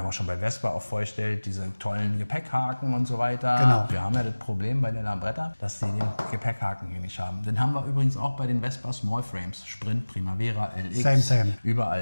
haben auch schon bei Vespa auch vorgestellt, diese tollen Gepäckhaken und so weiter. Genau. Wir haben ja das Problem bei der Lambretta, dass sie den Gepäckhaken hier nicht haben. Den haben wir übrigens auch bei den Vespa Small Frames, Sprint, Primavera, LX, Same.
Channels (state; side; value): inverted; both; correlation -1.00